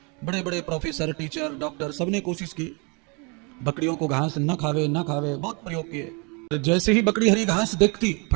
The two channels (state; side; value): quieter; left; 32.5 dB